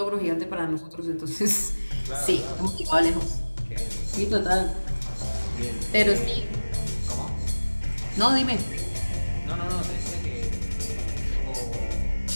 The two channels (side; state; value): both; inverted; correlation -1.00